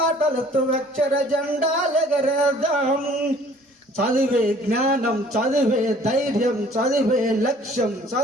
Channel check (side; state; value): both; normal; correlation 0.55